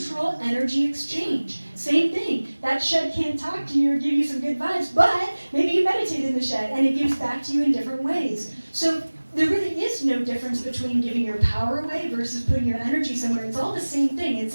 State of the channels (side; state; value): both; inverted; correlation -1.00